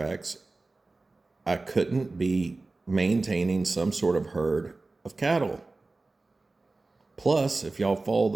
I couldn't be maintaining some sort of herd of cattle. Plus, if y'all follow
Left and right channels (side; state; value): left; quieter; 3.4 dB